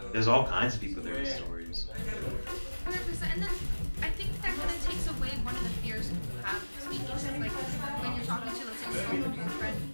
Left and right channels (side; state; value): both; inverted; correlation -1.00